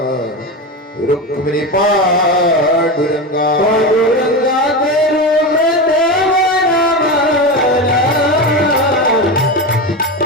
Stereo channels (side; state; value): both; normal; correlation 0.20